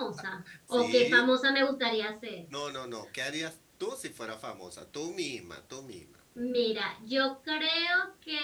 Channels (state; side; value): identical; both; correlation 1.00